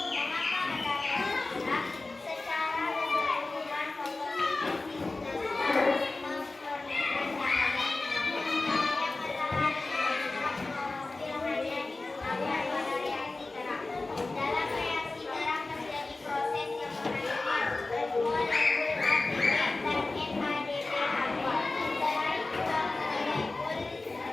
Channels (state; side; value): quieter; right; 3.3 dB